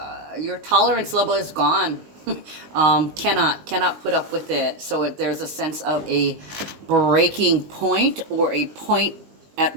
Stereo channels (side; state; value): left; late; 19 ms